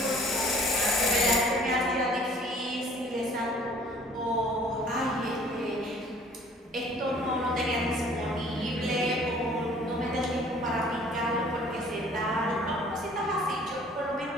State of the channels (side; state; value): both; normal; correlation 0.53